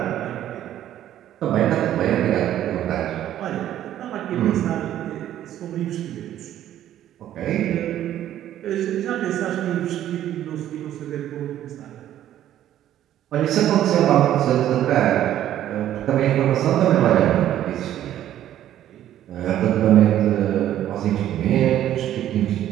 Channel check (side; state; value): left; quieter; 11.9 dB